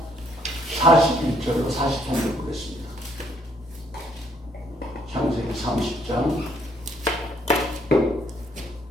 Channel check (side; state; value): both; normal; correlation 0.68